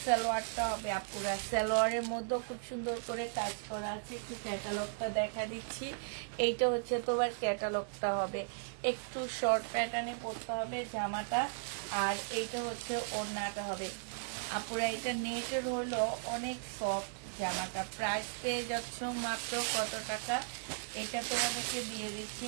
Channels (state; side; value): silent; left; digital silence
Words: সালোয়ারটা হবে আপুরা। সালোয়ারের মধ্যে খুব সুন্দর করে কাজ করা আছে। একটু ক্যাটালগটা দেখা দিচ্ছি। এইটা হচ্ছে তোমার ক্যাটালগটা হবে, একটু শর্ট প্যাটার্নে পড়তে হবে জামাটা। আর এইটা হচ্ছে ওড়নাটা হবে আপুরা। এটা নেটের হলো অনেক সফট জামাটা। প্রাইস পেয়ে যাচ্ছ মাত্র কত টাকা? এটা তোমাদেরকে দিয়ে দিচ্ছি